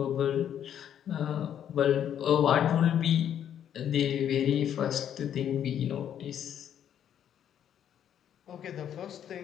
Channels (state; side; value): quieter; right; 9.7 dB